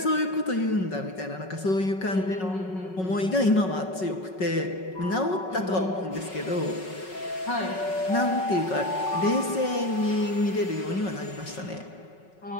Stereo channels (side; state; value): right; late; 5.4 ms